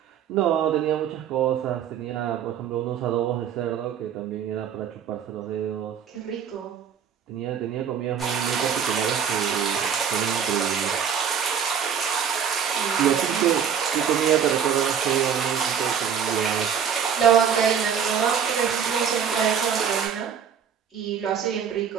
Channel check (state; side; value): quieter; left; 7.8 dB